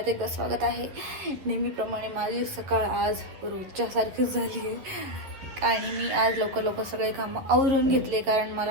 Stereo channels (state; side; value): late; left; 11 ms